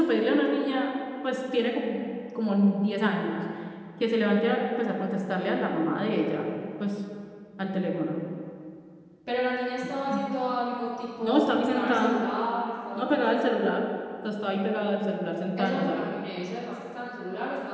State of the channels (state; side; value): identical; both; correlation 1.00